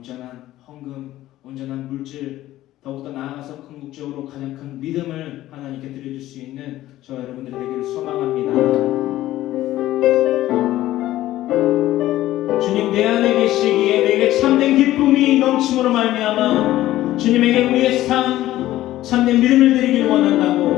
헌금, 온전한 물질, 더욱더 나아가서 궁극적으로 가장 큰 믿음을 하나님께 드려줄 수 있는 저와 여러분들이 되기를 소망합니다. 주님 내 안에 계시기에 내게 참된 기쁨이 넘침으로 말미암아 주님에게 우리의 삶 참된 믿음을 드리길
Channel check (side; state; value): right; quieter; 14.9 dB